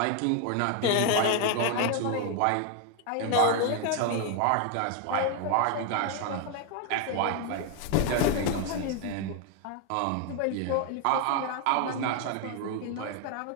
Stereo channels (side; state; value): both; different; correlation 0.01